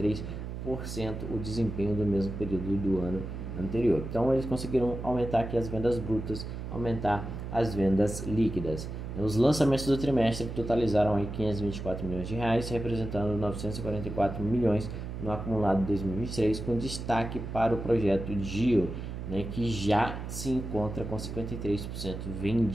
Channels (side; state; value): right; noise; hum, 7 dB below the sound